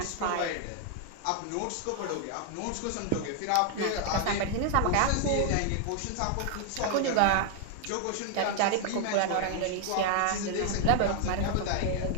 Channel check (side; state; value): both; different; correlation 0.00